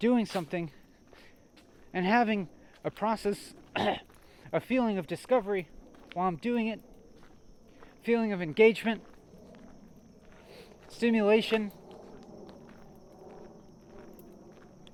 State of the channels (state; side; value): identical; both; correlation 1.00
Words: something, and having a process, a feeling of discovery while I'm doing it, feeling of engagement, stimulation,